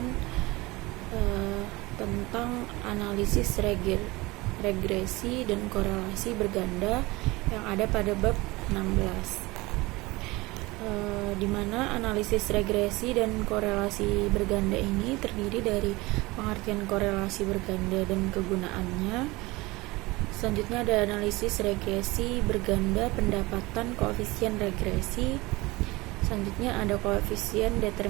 tentang analisis regresi dan korelasi berganda yang ada pada bab 16, di mana analisis regresi dan korelasi berganda ini terdiri dari pengertian korelasi berganda dan kegunaannya. Selanjutnya ada analisis regresi berganda pendapatan koefisien regresi. Selanjutnya ada koefisien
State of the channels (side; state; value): left; quieter; 22.0 dB